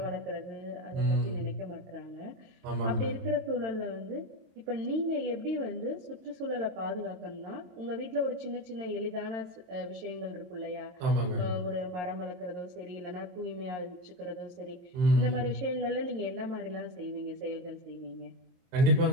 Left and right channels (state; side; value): late; left; 22 ms